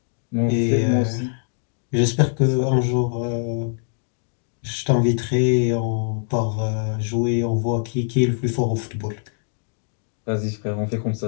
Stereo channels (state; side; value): silent; right; digital silence